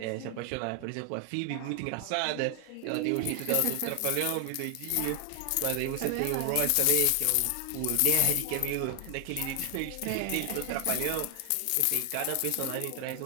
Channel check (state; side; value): different; both; correlation 0.00